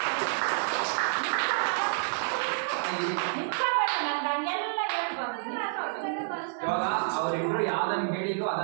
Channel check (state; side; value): silent; left; digital silence